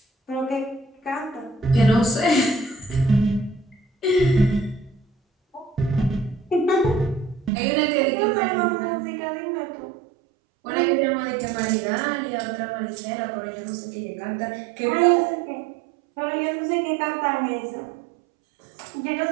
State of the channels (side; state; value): left; drops out; at 7.5 s